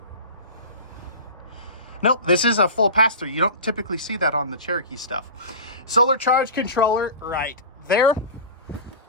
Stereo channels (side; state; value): both; inverted; correlation -0.32